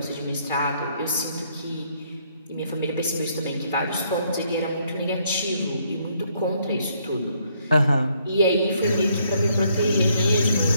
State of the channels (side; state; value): both; inverted; correlation -0.70